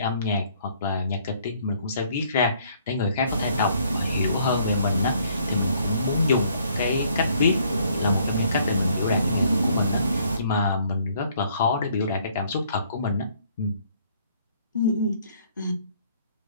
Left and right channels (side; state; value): both; inverted; correlation -0.64